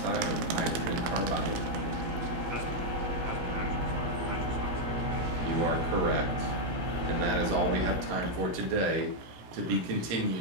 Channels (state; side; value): late; left; 17 ms